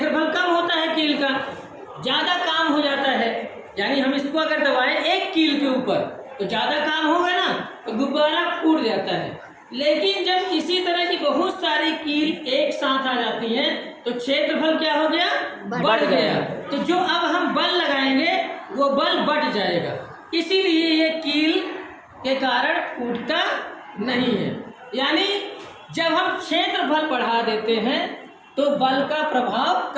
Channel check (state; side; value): identical; both; correlation 1.00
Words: कम होता है कील का, ज़्यादा काम हो जाता है। यानी हम इसको अगर दबाएं एक कील के ऊपर तो ज़्यादा काम होगा ना, तो गुब्बारा फूट जाता है। लेकिन जब इसी तरह की बहुत सारी कील एक साथ आ जाती हैं तो क्षेत्रफल क्या हो गया, बढ़ गया। तो जो अब हम बल लगाएंगे वो बल बढ़ जाएगा, इसीलिए ये कील के कारण फूटता नहीं है। यानी जब हम क्षेत्रफल बढ़ा देते हैं तो बल का प्रभाव